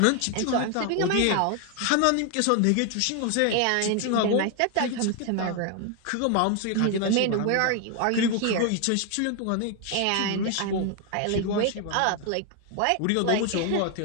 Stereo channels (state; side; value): different; both; correlation 0.01